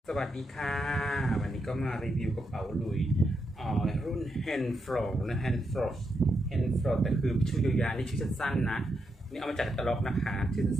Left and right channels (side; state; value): both; normal; correlation 0.83